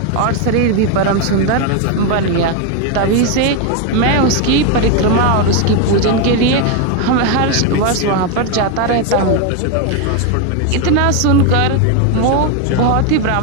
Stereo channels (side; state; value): both; different; correlation 0.01